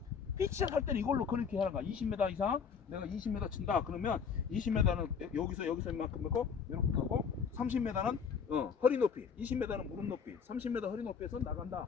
피치샷 할 때는 이걸로 그렇게 하는 거야. 20m 이상 내가 20m 친다 그러면 20m는 여기서 이만큼 넣고 이렇게 하고 30m는 허리 높이, 20m는 무릎 높이, 30m 허리 높이에서 나간다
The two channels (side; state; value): right; quieter; 6.4 dB